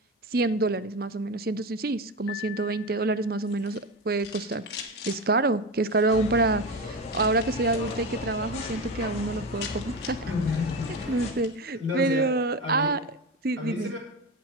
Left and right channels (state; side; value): normal; both; correlation 0.21